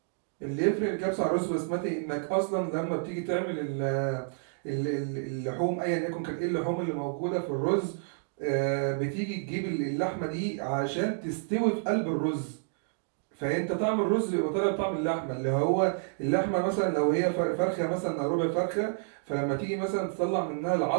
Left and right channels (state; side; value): silent; left; digital silence